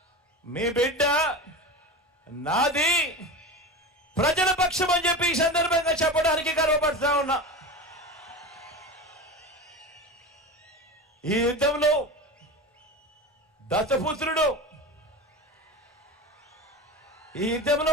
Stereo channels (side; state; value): both; normal; correlation 0.27